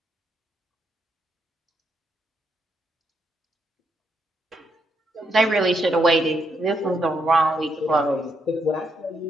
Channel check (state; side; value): normal; both; correlation 0.77